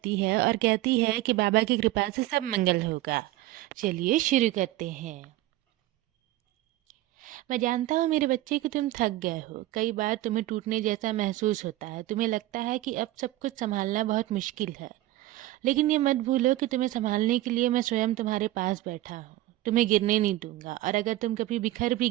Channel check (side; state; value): left; quieter; 16.3 dB